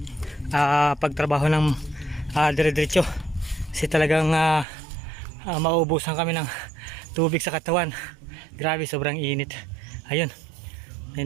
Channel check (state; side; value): drops out; left; at 4.7 s